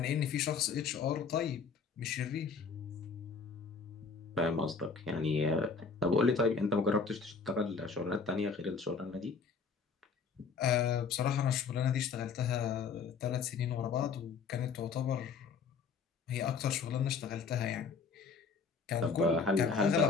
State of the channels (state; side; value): quieter; right; 5.3 dB